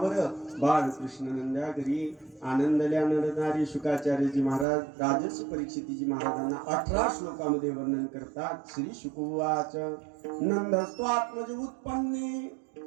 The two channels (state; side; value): drops out; left; at 4.7 s